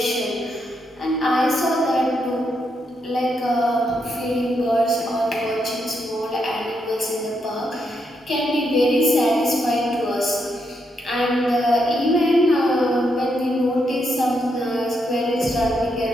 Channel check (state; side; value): normal; both; correlation 0.80